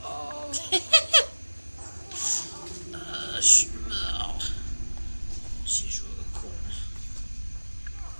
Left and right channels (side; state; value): both; inverted; correlation -1.00